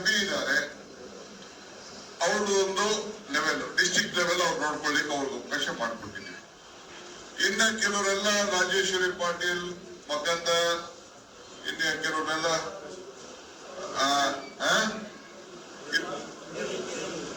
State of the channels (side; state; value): both; identical; correlation 1.00